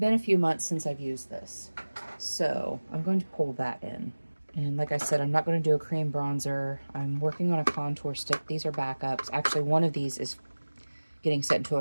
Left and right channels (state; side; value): inverted; both; correlation -1.00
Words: a few months since I've used this. So I'm going to pull that in. And like I said, I'm not going to do a cream bronzer. I'm working on a contour stick. These are backups. Actually, one of these is getting sent to